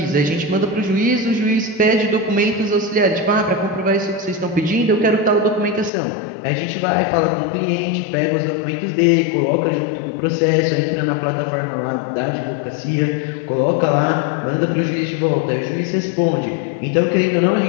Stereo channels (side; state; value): right; drops out; at 5.9 s